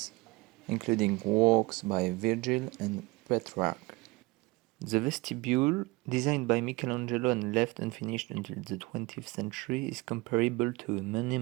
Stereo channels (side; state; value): left; quieter; 23.8 dB